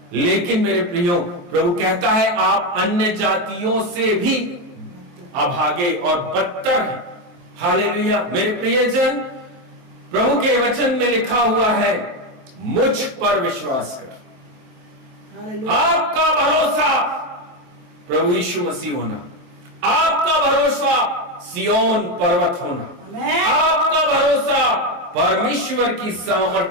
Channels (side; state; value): left; late; 23 ms